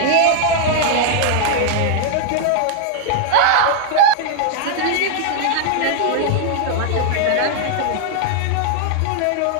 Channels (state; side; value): different; both; correlation 0.00